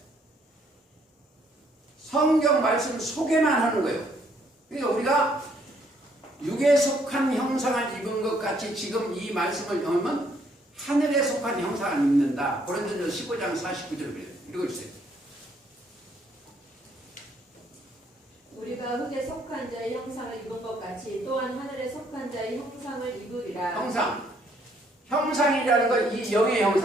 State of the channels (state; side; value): normal; both; correlation 0.68